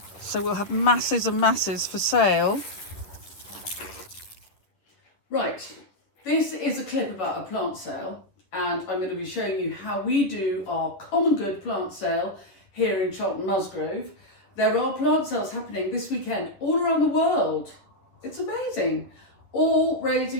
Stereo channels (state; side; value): late; right; 11 ms